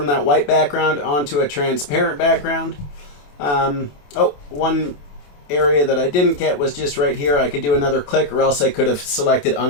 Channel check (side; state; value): right; late; 28 ms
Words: that white background onto a transparent background. One area that I didn't get was just right here. I could do another click, or else I could have selected